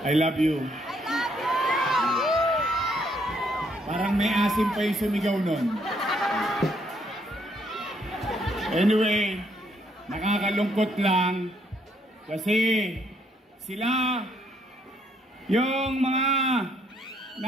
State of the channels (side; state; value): both; normal; correlation 0.70